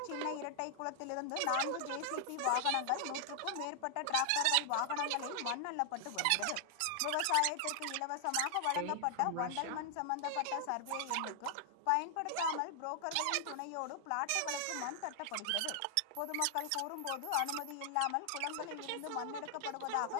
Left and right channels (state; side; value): different; both; correlation 0.00